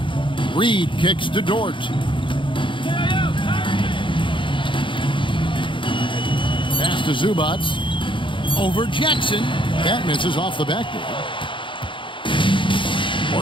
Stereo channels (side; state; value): right; late; 0.24 ms